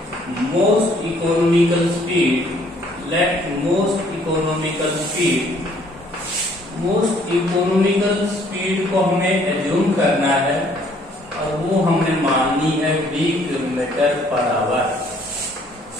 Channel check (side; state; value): both; normal; correlation 0.62